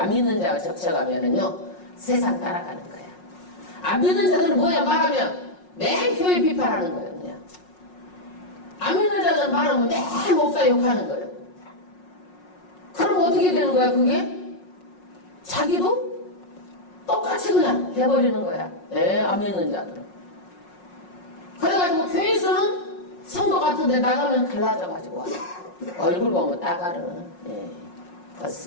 믿는 자와 접촉하면은요 세상 따라가는 거야. 안 믿는 자들은 뭐야? 말하면 매일 교회 비판하는 거예요. 그냥. 안 믿는 자들은 말하면 매일 목사 욕하는 거예요. 그럼 어떻게 되는 거야 그게? 자기도 똑같이 그냥 해버리는 거야. 안 믿는 자들은. 그래가지고 교회에서는 성도 같은데 나가면 달라져가지고 얼굴 보면 따가는.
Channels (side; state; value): right; late; 5.5 ms